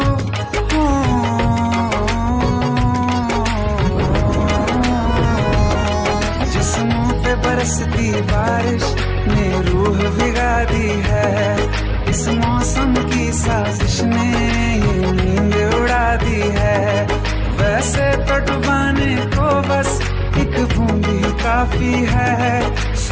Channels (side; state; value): both; identical; correlation 1.00